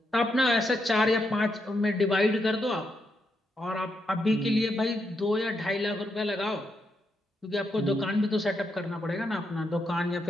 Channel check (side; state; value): both; normal; correlation 0.81